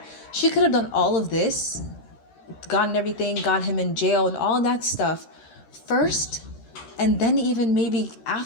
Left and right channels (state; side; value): late; right; 13 ms